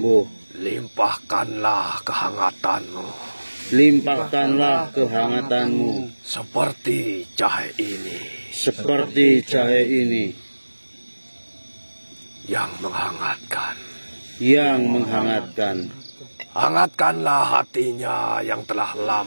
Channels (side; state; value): both; inverted; correlation -1.00